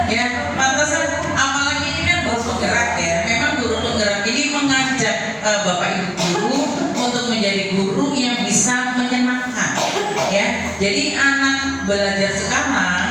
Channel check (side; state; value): both; identical; correlation 1.00